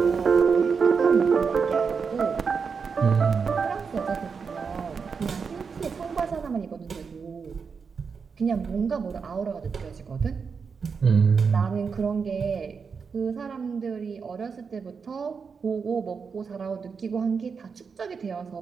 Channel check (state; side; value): quieter; left; 5.6 dB